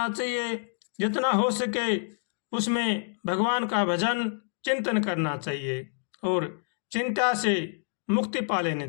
चाहिए। जितना हो सके उसमें भगवान का भजन चिंतन करना चाहिए और चिंता से मुक्ति पा लेनी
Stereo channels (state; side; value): silent; right; digital silence